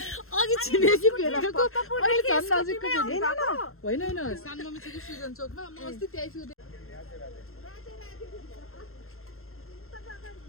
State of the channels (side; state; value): right; late; 0.62 ms